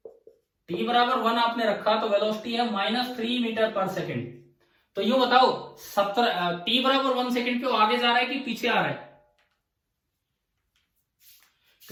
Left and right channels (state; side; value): identical; both; correlation 1.00